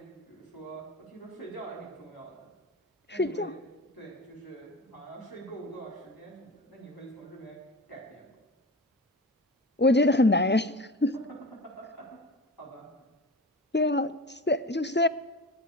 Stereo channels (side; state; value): both; normal; correlation 0.31